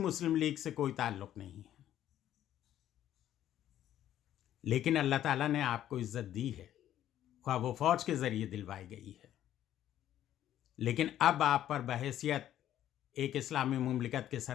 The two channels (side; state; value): right; quieter; 11.8 dB